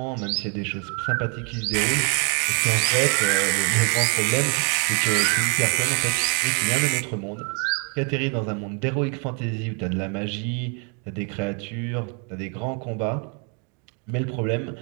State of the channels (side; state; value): left; quieter; 37.1 dB